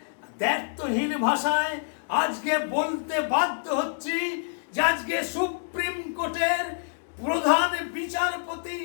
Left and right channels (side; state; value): right; silent; digital silence